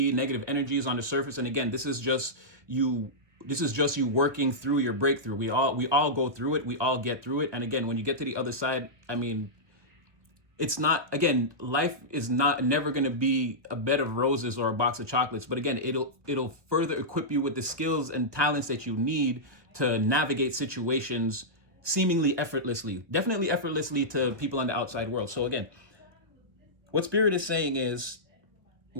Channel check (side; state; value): left; late; 1.4 ms